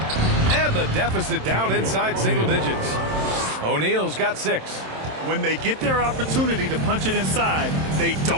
And the deficit down inside single digits. O'Neal's got 6. When they get their opportunity to punch it inside, they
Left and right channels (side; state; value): left; late; 27 ms